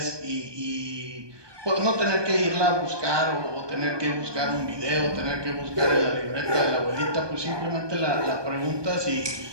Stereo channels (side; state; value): left; late; 1.2 ms